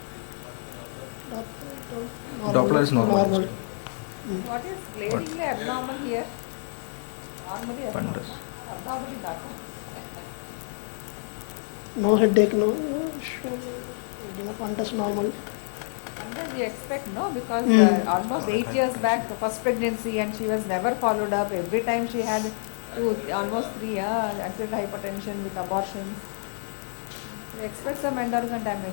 is normal. normal. What is clearly abnormal here? Normally abnormal. No headache, no. That's normal. They expect no, because almost 8 years back, the first pregnancy, and she was never followed up. Every time she had almost 3 years, acid hypertension, abortion. They expect some endocrine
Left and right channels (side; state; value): right; silent; digital silence